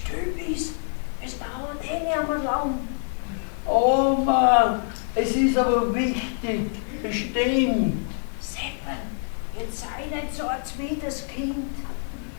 bist, es dauert eh nicht mehr lang. Oma, es ist aber wichtig, bestimmt. Seppel, jetzt sei nicht so ein zweites Kind.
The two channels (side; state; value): right; silent; digital silence